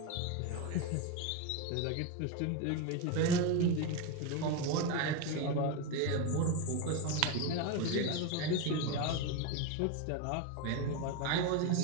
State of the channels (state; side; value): different; both; correlation 0.03